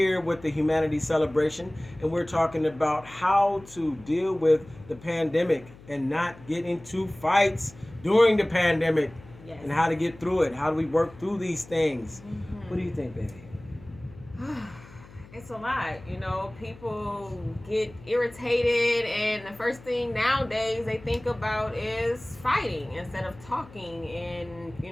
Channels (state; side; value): noise; left; hum, 21 dB below the sound